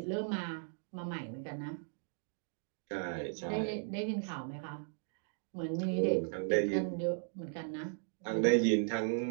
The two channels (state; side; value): silent; left; digital silence